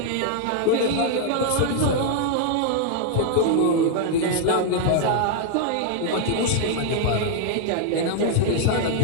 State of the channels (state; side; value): different; both; correlation 0.00